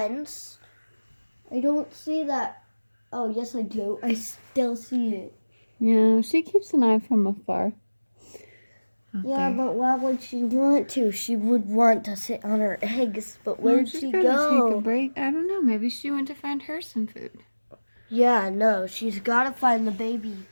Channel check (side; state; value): both; inverted; correlation -1.00